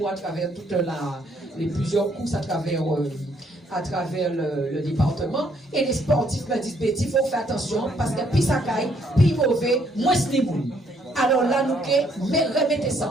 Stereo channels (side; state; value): both; normal; correlation 0.69